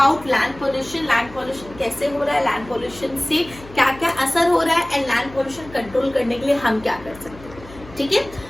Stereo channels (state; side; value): noise; left; hum, 19 dB below the sound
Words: land pollution. Land pollution कैसे हो रहा है, लैंड पोल्यूशन से क्या क्या असर हो रहा है एंड लैंड पोल्यूशन कंट्रोल करने के लिए हम क्या कर सकते हैं। ठीक है,